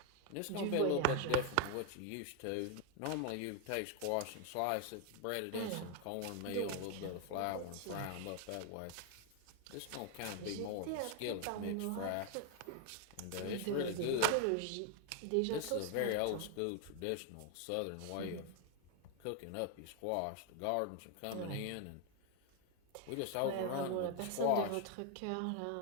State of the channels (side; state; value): both; different; correlation 0.01